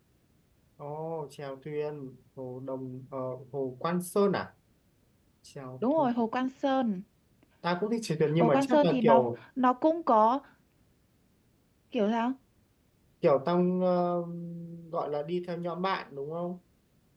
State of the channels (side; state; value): both; identical; correlation 1.00